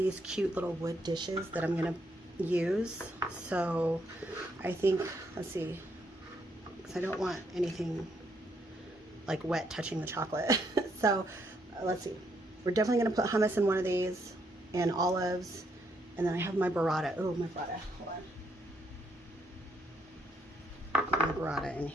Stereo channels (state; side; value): normal; both; correlation 0.74